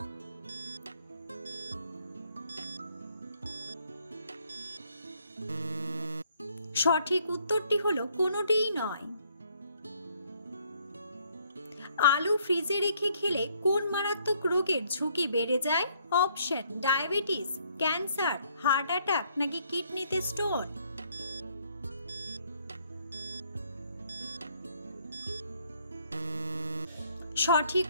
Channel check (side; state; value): both; inverted; correlation -0.67